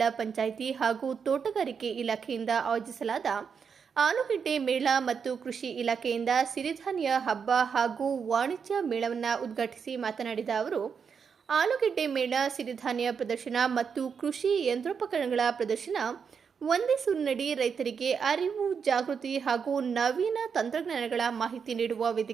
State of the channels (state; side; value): quieter; left; 6.4 dB